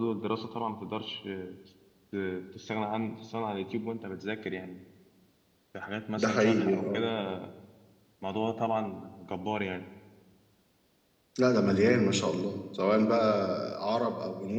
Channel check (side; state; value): both; identical; correlation 1.00